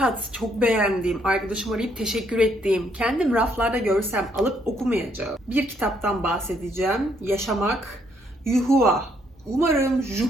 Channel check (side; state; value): both; normal; correlation 0.70